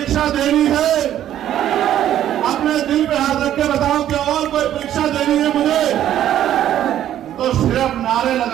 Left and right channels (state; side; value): quieter; left; 11.5 dB